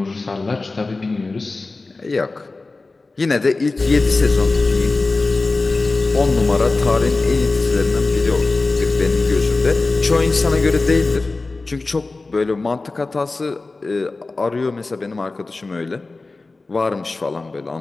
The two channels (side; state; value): right; quieter; 3.5 dB